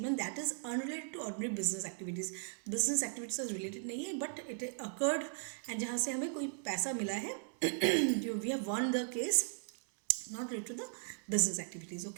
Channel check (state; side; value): silent; left; digital silence